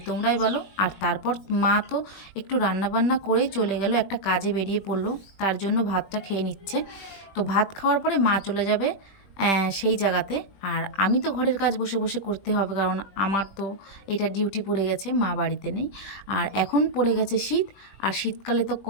তোমরাই বলো। আর তারপর মা তো একটু রান্নাবান্না করেই চলে গেল, একটা কাজে বেরিয়ে পড়লো, তার জন্য ভাতটা খেয়ে নিচ্ছে। তো ভাত খাওয়ার পরে মা চলে যাবে সেই জায়গাতে। আর আমি তো ঘরের কাজ বসে বসে করতে হবে, কারণ আমার তো এটা ডিউটি পড়ে গেছে, মা বাড়িতে নেই। আর এখন পড়ে গেছে শীত, আর শীতকালে তো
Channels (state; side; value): late; right; 20 ms